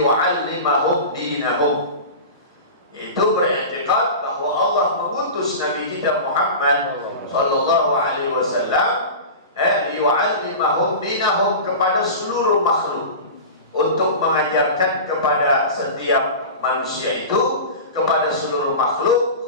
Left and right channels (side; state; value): both; inverted; correlation -0.31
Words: dinahum, yaitu beriktikad bahwa Allah mengutus Nabi kita Muhammad sallallahu alaihi wasallam liyu'allimahum dinahum, kepada seluruh makhluk, untuk mengajarkan kepada setiap manusia itu, kepada seluruh makhluk